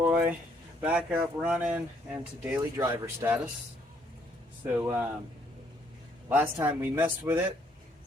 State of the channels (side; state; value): both; normal; correlation 0.68